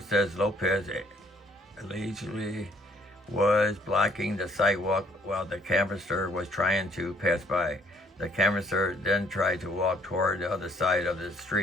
says Lopez allegedly was blocking the sidewalk while the canvasser was trying to pass by. The canvasser then tried to walk toward the other side of the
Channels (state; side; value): normal; both; correlation 0.63